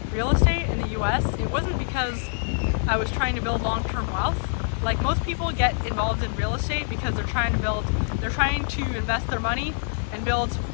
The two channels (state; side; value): silent; right; digital silence